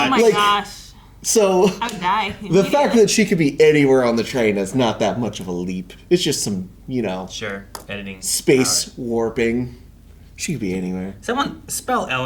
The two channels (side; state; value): both; identical; correlation 1.00